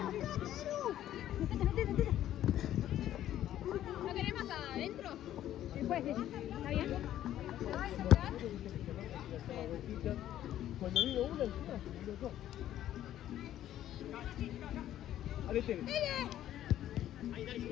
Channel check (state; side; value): quieter; right; 12.2 dB